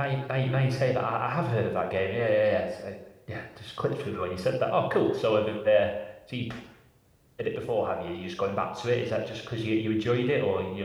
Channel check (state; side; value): identical; both; correlation 1.00